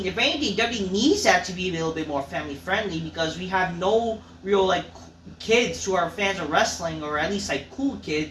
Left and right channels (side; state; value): both; identical; correlation 1.00